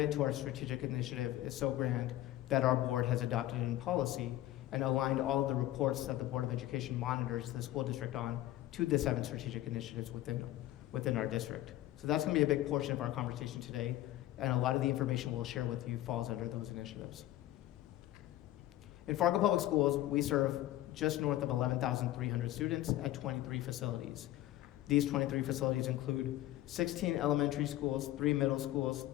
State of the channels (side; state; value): right; quieter; 14.8 dB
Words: to our strategic initiative is so grand that our board has adopted in policy and aligned all of the reports that the Board of Education monitors the school district on to the 7 strategic initiatives within our district. So that's going to be a big portion of our conversation today, and a lot of the information we'll share with you falls under those initiatives. In Fargo Public Schools, we serve just north of 11,300 students at 23 facilities. These 23 facilities include 16 elementary schools, 3 middle schools,